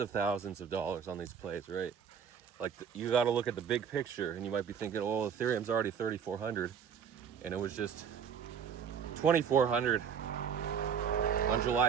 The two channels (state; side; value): quieter; left; 7.4 dB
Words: thousands of dollars on these plays, right? Like you got to look at the big picture, and you might be thinking, oh, Ethereum's already 3,400, and it was just 2,400 on